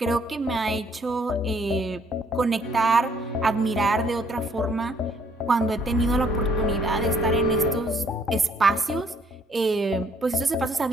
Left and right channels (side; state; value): both; normal; correlation 0.65